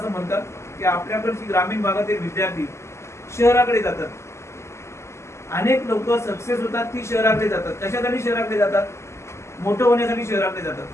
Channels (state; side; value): late; right; 0.13 ms